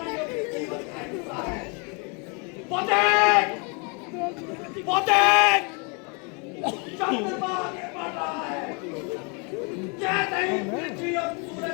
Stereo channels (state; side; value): quieter; right; 33.8 dB